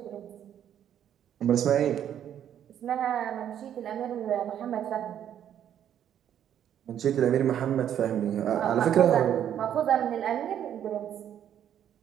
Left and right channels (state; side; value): quieter; left; 10.0 dB